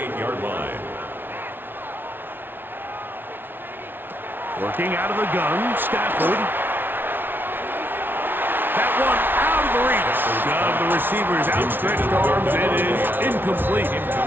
line. Working out of the gun, Stafford. That one out of the reach of the receiver's outstretched arms. It is incomplete.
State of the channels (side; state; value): left; late; 0.099 ms